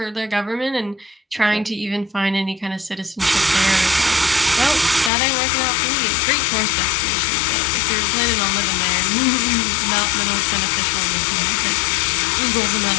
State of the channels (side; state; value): right; drops out; at 5.1 s